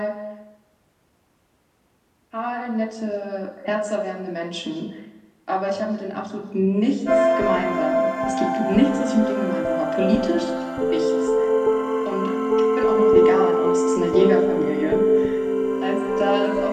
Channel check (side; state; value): both; identical; correlation 1.00